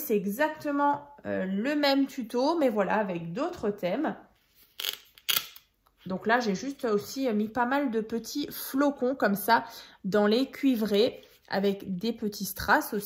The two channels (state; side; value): identical; both; correlation 1.00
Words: exactement le même tuto, mais voilà, avec d'autres thèmes. Donc là, j'ai juste aussi mis pas mal de petits flocons comme ça dans les cuivrés avec des petits strass